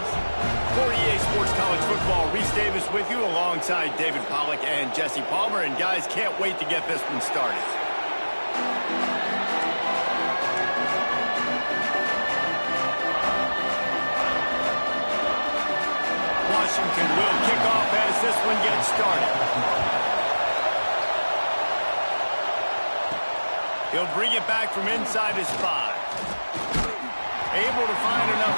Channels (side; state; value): both; inverted; correlation -1.00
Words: For EA Sports College Football, Reese Davis with you alongside David Pollack and Jesse Palmer. And guys, can't wait to get this one started. Washington will kick off as this one gets started. He'll bring it back from inside his 5. Able to find